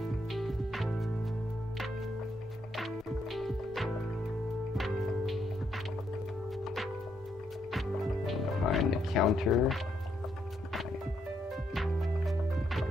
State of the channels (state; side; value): normal; both; correlation 0.76